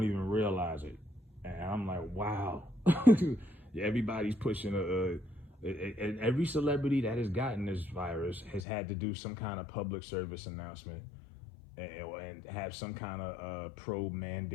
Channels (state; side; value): drops out; right; at 8.6 s